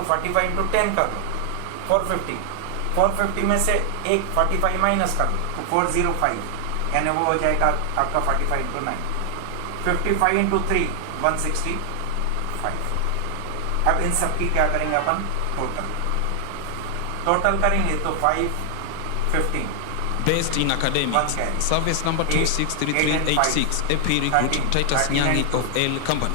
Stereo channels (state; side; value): different; both; correlation 0.00